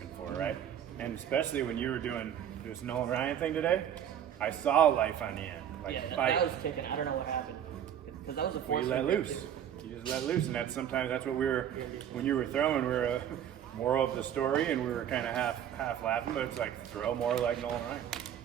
for, right? And especially when you were doing this Nolan Ryan thing today, I saw life on the end. Like Yeah, fight. that was kicking. I don't know what happened. Because that was a Well, force. you let loose. You just let loose, and that's what we were. When you were throwing, we were moral of the story, and we were kind of half laughing, but it's like throw more like Nolan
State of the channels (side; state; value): left; quieter; 9.7 dB